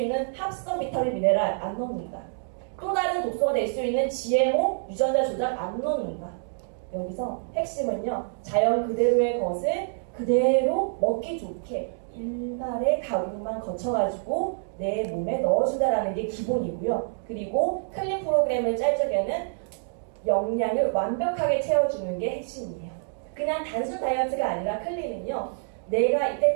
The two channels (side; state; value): left; silent; digital silence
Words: 합성 비타민, 미네랄 안 넣는다. 또 다른 독소가 될 수 있는 GMO, 유전자 조작 안 넣는다. 여기서 핵심은요. 자연 그대로의 것을 그대로 먹기 좋게 일말의 가공만 거쳐가지고 내 몸에 넣어준다라는 게 기본이고요. 그리고 클린 프로그램을 짤 적에는 영양을 완벽하게 채워주는 게 핵심이에요. 그냥 단순 다이어트가 아니라 클린은요. 내가